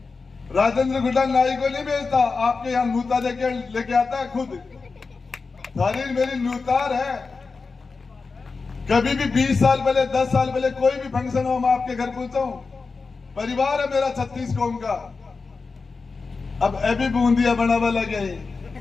राजेंद्र गुड्डा नाई को नहीं भेजता, आपके यहाँ नूता लेके आता है खुद। थारी मेरी नूतार है। कभी भी 20 साल पहले 10 साल पहले कोई भी फंक्शन हो मैं आपके घर पहुंचा हूं। परिवार है मेरा 36 कौम का। अब अभी बूंदिया बनावा लगे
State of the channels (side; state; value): right; quieter; 4.4 dB